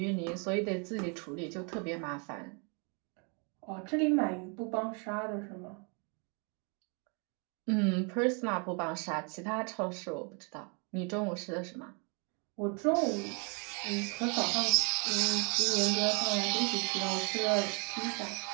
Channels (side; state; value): left; quieter; 35.7 dB